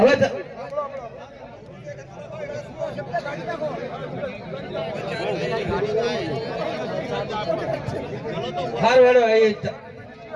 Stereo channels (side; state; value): both; identical; correlation 1.00